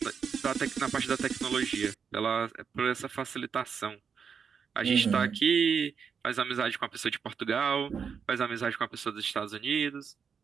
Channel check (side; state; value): left; quieter; 6.5 dB